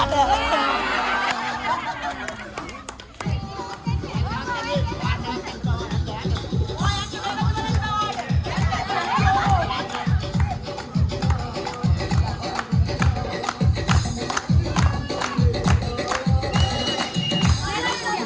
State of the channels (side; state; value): both; identical; correlation 1.00